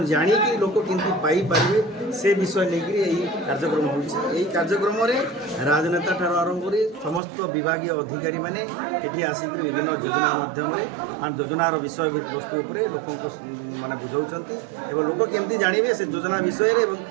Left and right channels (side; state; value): left; drops out; at 7.2 s